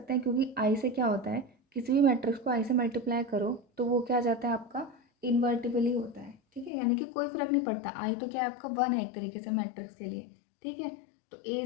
हैं क्योंकि आई से क्या होता है, किसी भी मैट्रिक्स को आई से मल्टीप्लाई करो तो वो क्या आ जाता है आपका इन्वर्टिबल ही होता है। ठीक है, यानी कि कोई फर्क नहीं पड़ता, आई तो क्या है आपका 1 है एक तरीके से मैट्रिक्स के लिए। ठीक है, तो ए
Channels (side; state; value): right; drops out; at 6.7 s